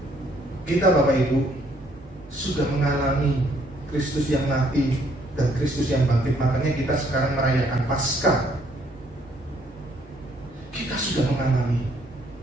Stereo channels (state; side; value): normal; both; correlation 0.66